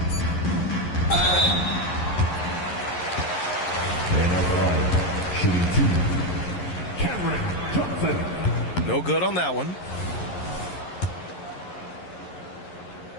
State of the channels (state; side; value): late; right; 11 ms